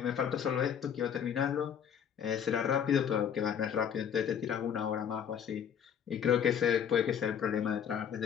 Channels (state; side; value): quieter; right; 8.3 dB